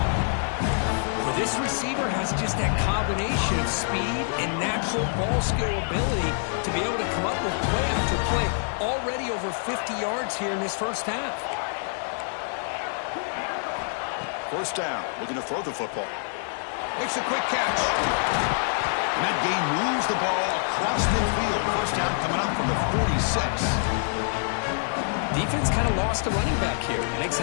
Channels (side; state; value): right; silent; 56 dB below the other